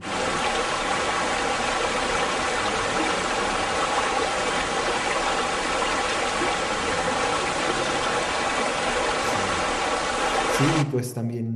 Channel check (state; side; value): identical; both; correlation 1.00